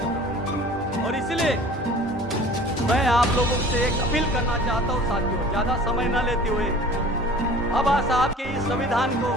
और इसलिए मैं आप लोगों से एक अपील करना चाहता हूँ साथियों, ज्यादा समय न लेते हुए बाबा साहब के इस संविधान को,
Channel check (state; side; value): normal; both; correlation 0.45